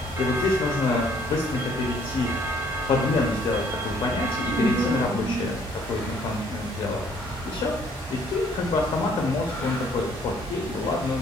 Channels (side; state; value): both; normal; correlation 0.62